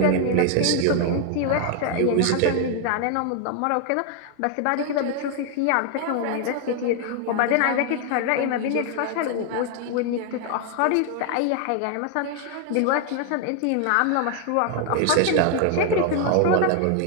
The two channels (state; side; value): different; both; correlation 0.00